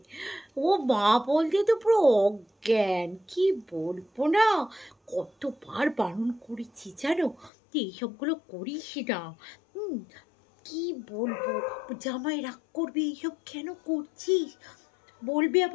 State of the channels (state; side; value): drops out; right; at 7.5 s